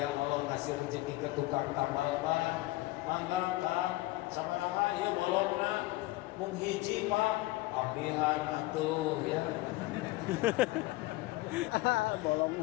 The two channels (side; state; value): right; quieter; 19.5 dB